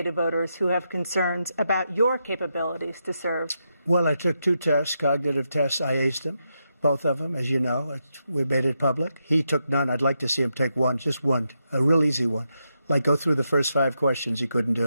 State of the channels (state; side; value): inverted; both; correlation -0.84